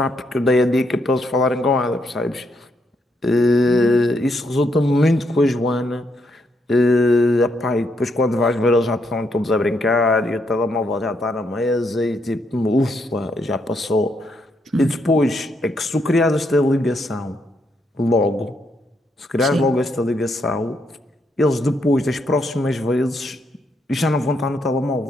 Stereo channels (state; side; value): normal; both; correlation 0.76